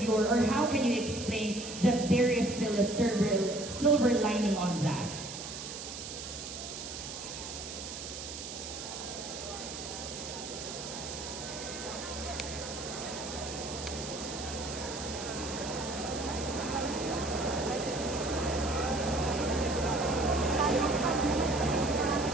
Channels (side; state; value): right; noise; hiss, 8 dB below the sound